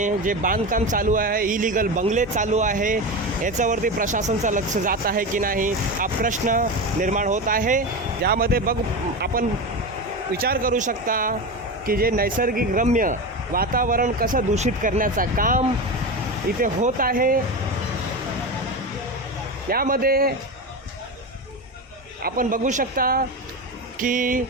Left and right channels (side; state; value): both; normal; correlation 0.22